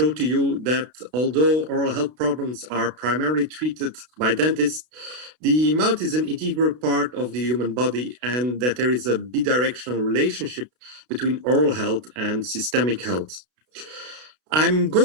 to you that although oral health problems are primarily treated by dentists, the mouth is an integral part of the human body and that there is a bidirectional relationship between oral health and systemic health. I'm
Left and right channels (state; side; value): late; left; 32 ms